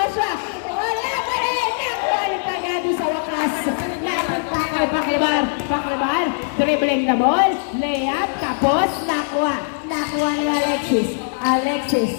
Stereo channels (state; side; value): silent; right; digital silence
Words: wala pa rin, nakuha ni Pagado sa wakas. Napunta kay Paklibar. Paklibar, dribbling the ball, layup, tapos nakuha. Nakuha ni Alexis.